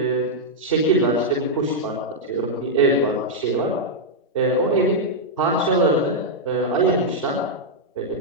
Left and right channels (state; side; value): normal; both; correlation -0.05